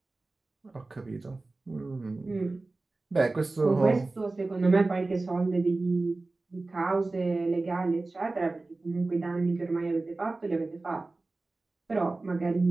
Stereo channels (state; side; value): quieter; left; 3.3 dB